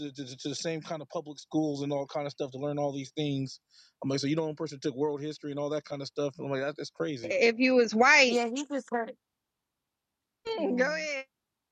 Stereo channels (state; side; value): identical; both; correlation 1.00